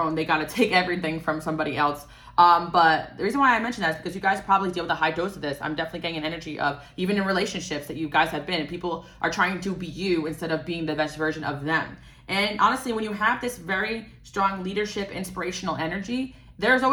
own. They got to take everything from somebody else. But the reason why I mention that is because you guys probably deal with a high dose of this. I'm definitely getting an energy of, even in relationships that you guys have been, and people are trying to be you instead of being the best version of them. And honestly, when you have this very strong leadership, inspirational energy, there's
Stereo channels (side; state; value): both; identical; correlation 1.00